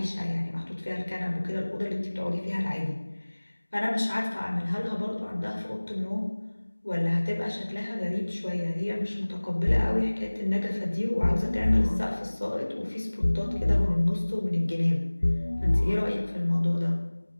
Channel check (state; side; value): inverted; both; correlation -1.00